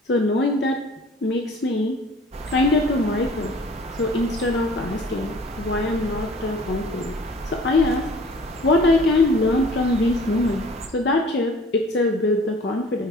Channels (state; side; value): normal; both; correlation 0.49